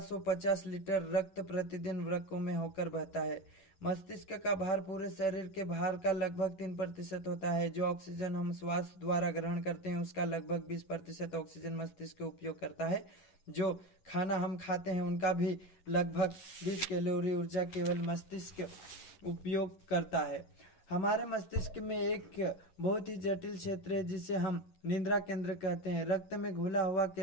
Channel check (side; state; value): right; late; 11 ms